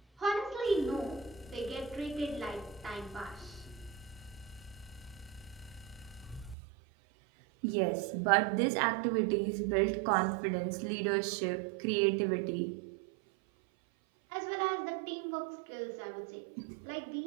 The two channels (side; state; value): left; drops out; at 6.6 s